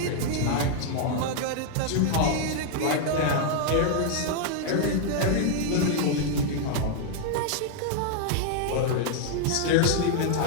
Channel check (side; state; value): both; different; correlation 0.00